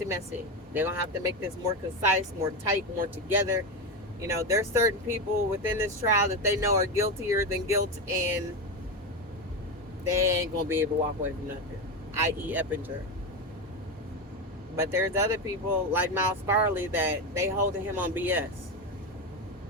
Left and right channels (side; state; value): both; normal; correlation 0.14